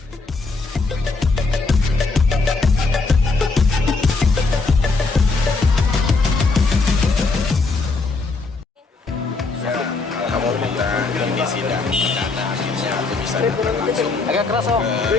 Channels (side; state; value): right; quieter; 3.9 dB